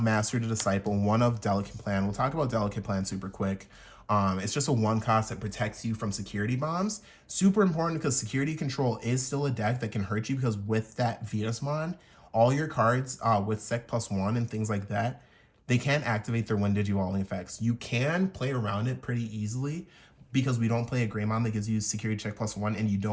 Master to Disciple, 1 of Delicate Plan. We'll talk about Delicate Plan super quick. It's just a 1 cost that protects you from security bombs. Super important because security control is still a deck that can hurt you, because with that Sistermon, all your cards with Sec +1 and things like that, they can't activate their when Digivolving effects. You can play around it pretty easily because we don't play a Greymon that gives you security check +1, and you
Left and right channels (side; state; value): both; identical; correlation 1.00